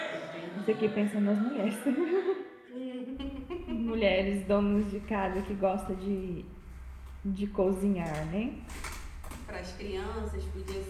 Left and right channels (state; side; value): identical; both; correlation 1.00